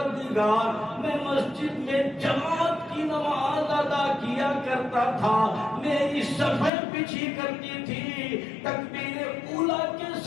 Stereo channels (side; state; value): right; drops out; at 6.7 s